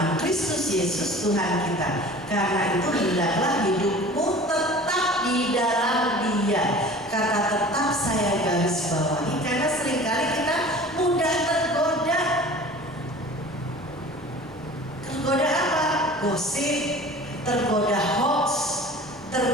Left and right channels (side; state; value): both; normal; correlation 0.42